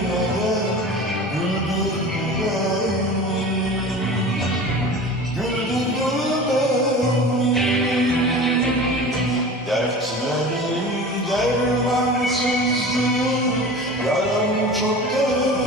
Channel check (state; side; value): normal; both; correlation 0.36